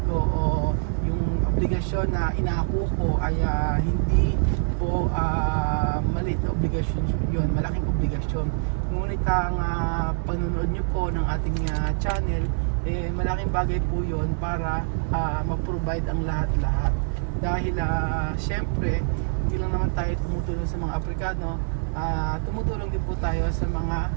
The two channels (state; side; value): silent; left; 62 dB below the other